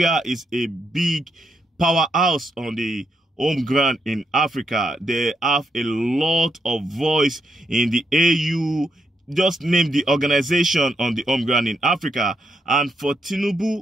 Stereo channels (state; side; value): normal; both; correlation 0.79